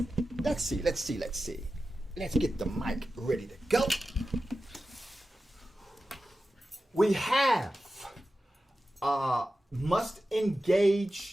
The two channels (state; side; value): normal; both; correlation 0.93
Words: Let's see. Let's get the mic ready to go. We have must